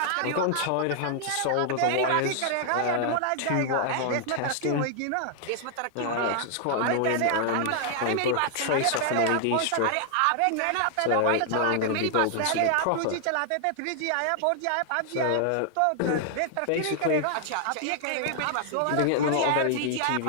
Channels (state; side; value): different; both; correlation 0.00